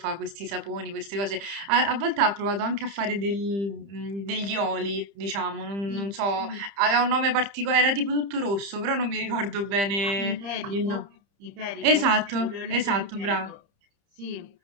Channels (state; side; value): late; left; 30 ms